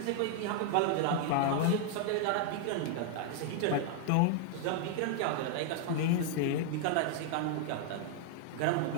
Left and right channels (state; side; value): different; both; correlation 0.00